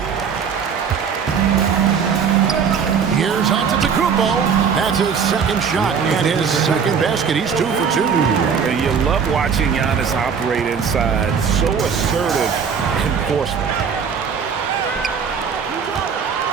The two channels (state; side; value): quieter; left; 6.5 dB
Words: Here's Antetokounmpo. That's his second shot and his second basket. He's 2 for 2. And you love watching Giannis operate inside. So assertive enforcement.